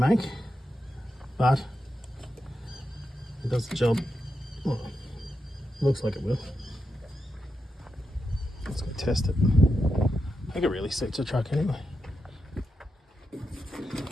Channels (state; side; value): normal; both; correlation 0.87